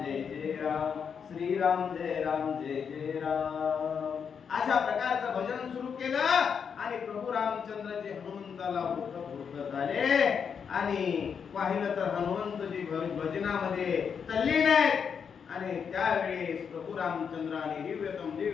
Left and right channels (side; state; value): right; quieter; 6.8 dB